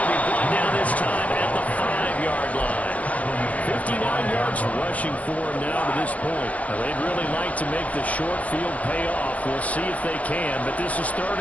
be brought down this time at the 5-yard line. 59 yards rushing for him now to this point. Now, they'd really like to make the short field pay off. We'll see if they can, but this is third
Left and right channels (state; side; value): late; right; 0.068 ms